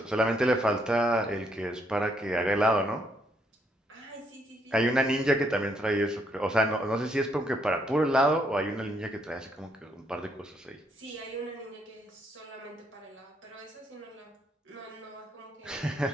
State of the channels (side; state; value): both; normal; correlation 0.73